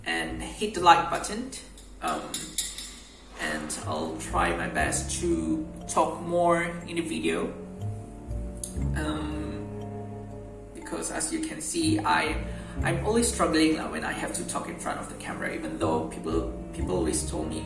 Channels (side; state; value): both; identical; correlation 1.00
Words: and hit the like button. And I'll try my best to talk more in the video. Because as you can see, I'm always struggling when I have to talk in front of the camera, even though people always told me,